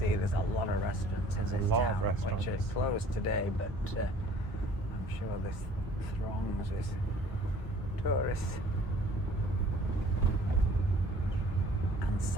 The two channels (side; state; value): both; normal; correlation 0.52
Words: there's a lot of restaurants in this a lot of town, restaurants. which are closed today, but I'm sure this throngs with tourists and